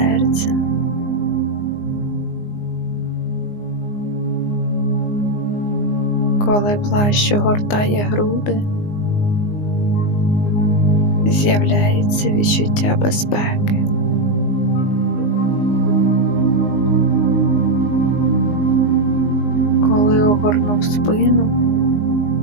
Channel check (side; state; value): right; late; 19 ms